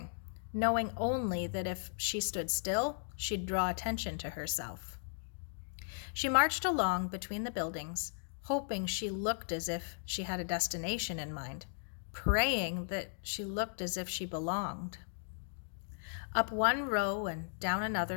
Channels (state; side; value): silent; right; digital silence